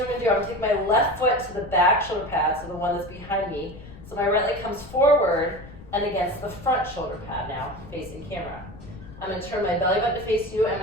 I'm going to do. I'm going to take my left foot to the back shoulder pad, so the one that's behind me. So my right leg comes forward and against the front shoulder pad now, facing camera. I'm going to turn my belly button to face you and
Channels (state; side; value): noise; left; rumble, 17 dB below the sound